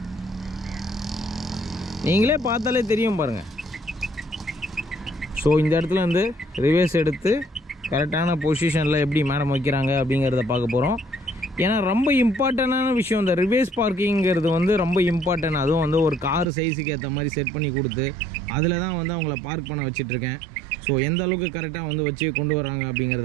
நீங்களே பார்த்தாலே தெரியும் பாருங்கள். ஸோ இந்த இடத்துல வந்து ரிவேஸ் எடுத்து கரெக்டான பொசிஷனில் எப்படி மேடம் வைக்கிறாங்க அப்படிங்கிறத பார்க்க போகிறோம். ஏன்னா ரொம்ப இம்பார்ட்டண்டான விஷயம் இந்த ரிவேஸ் பார்க்கிங்கிறது வந்து ரொம்ப இம்பார்ட்டன்ட். அதுவும் வந்து ஒரு கார் சைஸுக்கு ஏற்ற மாதிரி செட் பண்ணி கொடுத்து அதில் தான் வந்து அவங்கள பார்க் பண்ண வச்சிட்ருக்கேன். ஸோ எந்த அளவுக்கு கரெக்டாக வந்து வச்சு கொண்டு வராங்க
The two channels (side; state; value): left; drops out; at 16.4 s